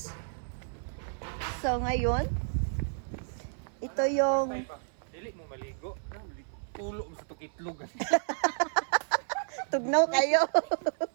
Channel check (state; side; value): silent; left; 57 dB below the other